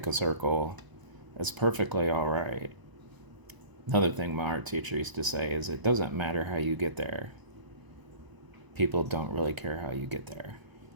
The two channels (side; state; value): left; late; 1.0 ms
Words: a circle, that's perfectly all right. Another thing my art teacher used to say is it doesn't matter how you get there. People don't really care how you get there,